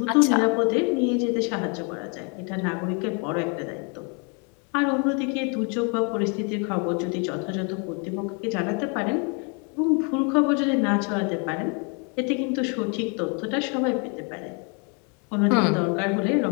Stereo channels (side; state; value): right; quieter; 35.9 dB